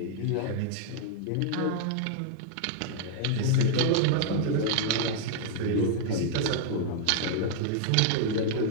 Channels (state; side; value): different; both; correlation -0.01